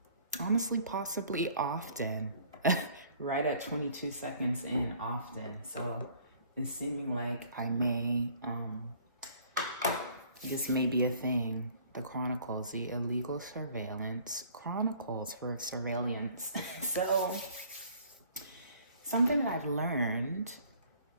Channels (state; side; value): inverted; both; correlation -0.56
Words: honestly, possibly often, right at 22 seconds in often. So it's seeming like I may, this may be a thing. The Chronicles, the Illegal Surveillance Chronicles for surveillance. So something that I've learned